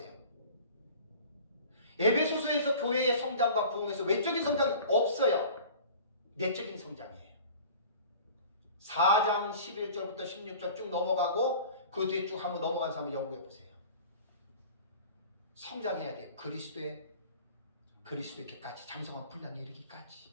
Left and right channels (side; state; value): both; inverted; correlation -0.43